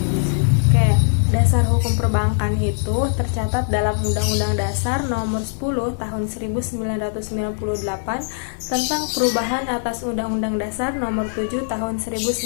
Oke, dasar hukum perbankan itu tercatat dalam Undang-Undang Dasar Nomor 10 Tahun 1998 tentang perubahan atas Undang-Undang Dasar Nomor 7 Tahun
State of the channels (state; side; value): silent; right; digital silence